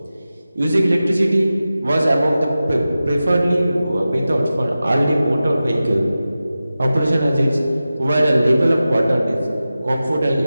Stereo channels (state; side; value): inverted; both; correlation -0.94